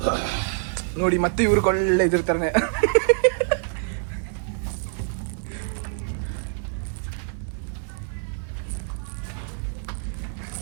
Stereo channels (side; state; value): left; silent; 61 dB below the other